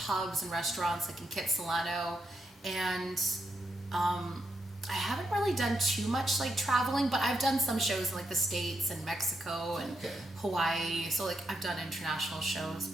and restaurants like in Kitsilano, and I haven't really done too much like traveling, but I've done some shows in like the States and Mexico and Hawaii. So like I've done international shows,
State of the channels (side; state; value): both; normal; correlation 0.82